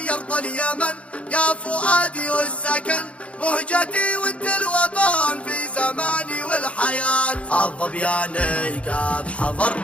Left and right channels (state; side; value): late; right; 0.062 ms